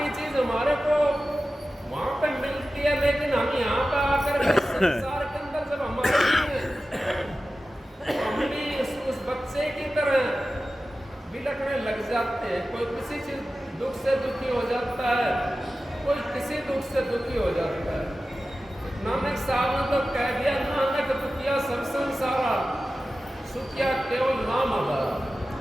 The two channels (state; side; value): normal; both; correlation 0.94